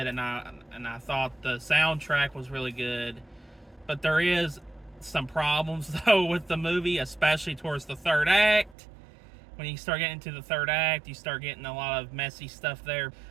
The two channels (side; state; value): left; drops out; at 8.8 s